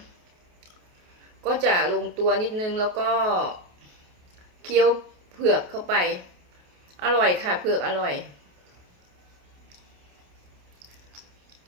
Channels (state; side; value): late; left; 28 ms